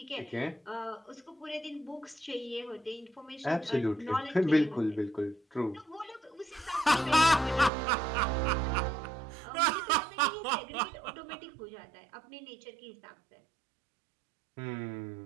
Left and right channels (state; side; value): drops out; left; at 7.7 s